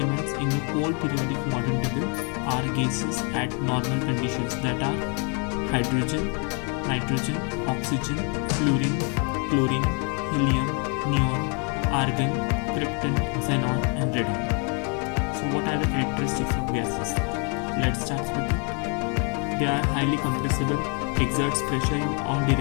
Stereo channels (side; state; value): right; quieter; 36.8 dB